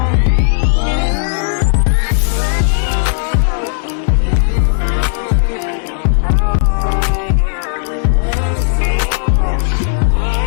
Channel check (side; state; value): right; silent; digital silence